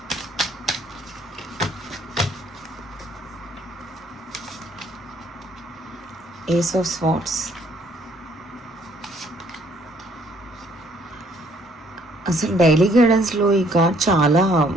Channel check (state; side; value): normal; both; correlation 0.63